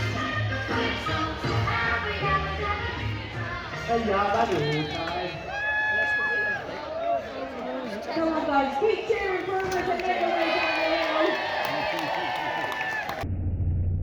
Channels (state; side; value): identical; both; correlation 1.00